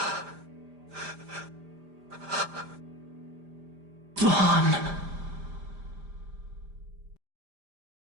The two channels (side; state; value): left; late; 5.0 ms